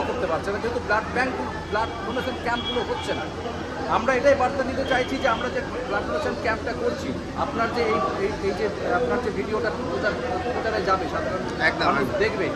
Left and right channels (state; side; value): identical; both; correlation 1.00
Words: করতে পারছে না, যেহেতু ব্লাড ডোনেশন ক্যাম্পগুলো হচ্ছে না। আমরা এটাই বার্তা দিতে চাইছি যে আমরা যে ব্লাড ডোনেশন ক্যাম্পটা করছি, আপনার যে এই যে আপনার যে ভিডিওটা প্রচারে যাবে, সাধারণ মানুষ দেখবে,